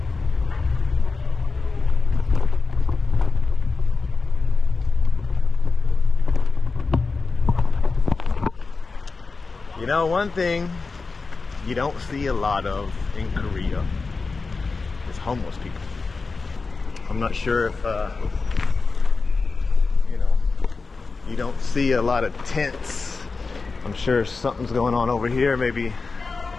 You know, one thing you don't see a lot of in Korea is homeless people. I'm not sure if you know, you don't see a lot of tents. I'm sure something's going on over here. Maybe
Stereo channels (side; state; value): right; quieter; 4.2 dB